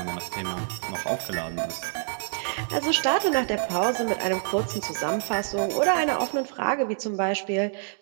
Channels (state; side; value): silent; left; 60 dB below the other